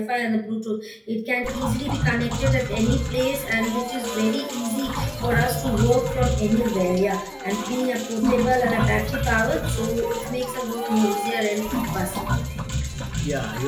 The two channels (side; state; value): both; identical; correlation 1.00